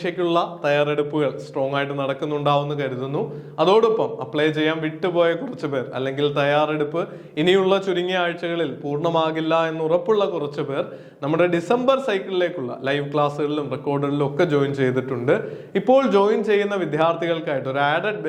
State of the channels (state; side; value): identical; both; correlation 1.00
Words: തയ്യാറെടുപ്പുകൾ strong ആയിട്ട് നടക്കുന്നുണ്ടാവുമെന്ന് കരുതുന്നു. അതോടൊപ്പം അപ്ലൈ ചെയ്യാൻ വിട്ടുപോയ കുറച്ച് പേർ അല്ലെങ്കിൽ തയ്യാറെടുപ്പ് ഇനിയുള്ള ചുരുങ്ങിയ ആഴ്ചകളിൽ പൂർണ്ണമാകില്ല എന്ന് ഉറപ്പുള്ള കുറച്ച് പേർ നമ്മുടെ ഡിസംബർ സൈക്കിളിലേക്കുള്ള ലൈവ് ക്ലാസ്സുകളിലും റെക്കോർഡുകളിലും ഒക്കെ ജോയിൻ ചെയ്തിട്ടുണ്ട്. ഇപ്പോൾ ജോയിൻ ചെയ്യുന്ന വിദ്യാർത്ഥികൾക്കായിട്ട് ഒരു ആഡഡ്